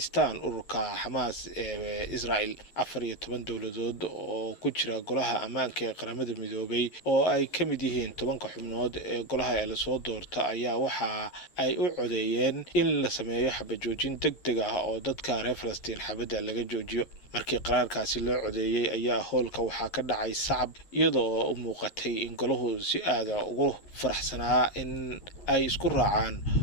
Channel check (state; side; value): late; right; 11 ms